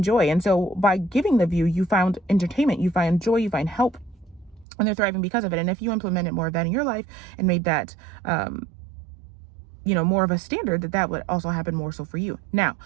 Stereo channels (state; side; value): drops out; left; at 4.7 s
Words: joy. And so by giving the view, you found entertainment, you find joy, you find help, and they're thriving because of it. And if you implemented more of that in your life and made that, more of a standard, that would also happen more so for you. Now,